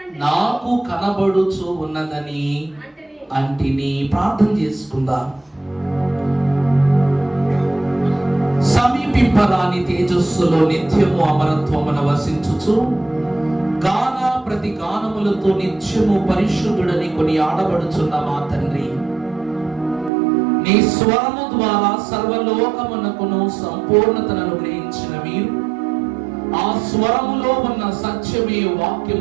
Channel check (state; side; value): drops out; left; at 20.1 s